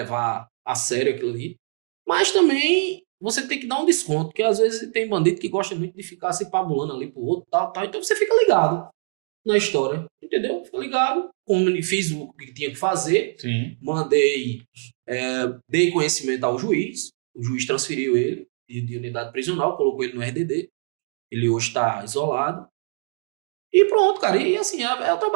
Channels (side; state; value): left; silent; digital silence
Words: a sério aquilo ali. Mas também você tem que dar um desconto, porque às vezes tem bandido que gosta muito de ficar se pabulando ali pro outro, tal. Então você fica ligado na história, entendeu? Fica ligado, fiz o que tinha que fazer. Sim. Mandei, dei conhecimento ao juiz, o juiz transferiu ele de unidade prisional, colocou ele no RDD, ele hoje está isolado. E pronto, cara, e assim, é o